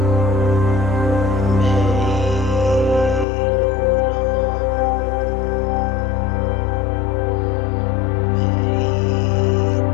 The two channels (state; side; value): drops out; right; at 3.2 s